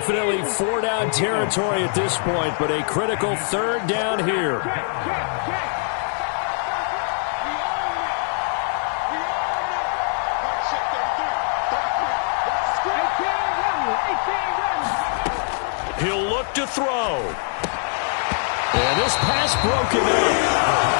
4-down territory at this point, but a critical 3rd down here. He'll look to throw. And this pass broken up.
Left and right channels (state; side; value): silent; right; 56 dB below the other